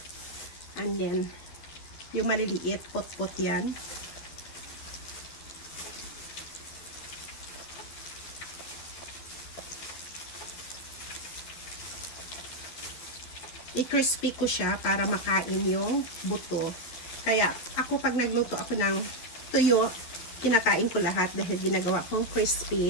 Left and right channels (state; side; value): late; right; 12 ms